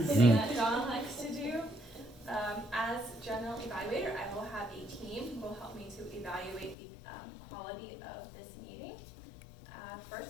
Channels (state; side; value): drops out; right; at 6.8 s